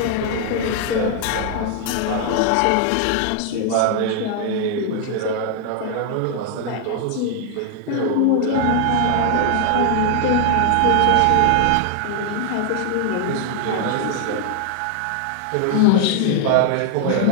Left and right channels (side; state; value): both; different; correlation 0.00